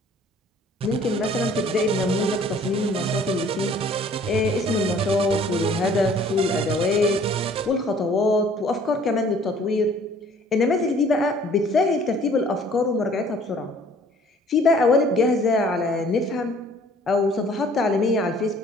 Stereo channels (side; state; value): both; normal; correlation 0.55